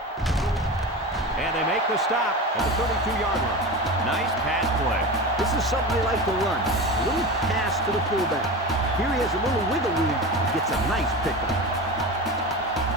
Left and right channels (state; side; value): normal; both; correlation 0.27